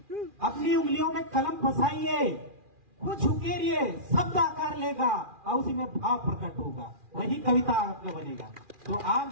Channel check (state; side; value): late; left; 2.4 ms